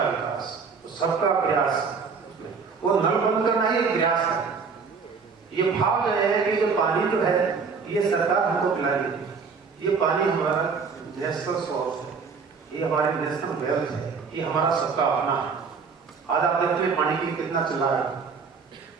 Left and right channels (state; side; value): quieter; left; 5.3 dB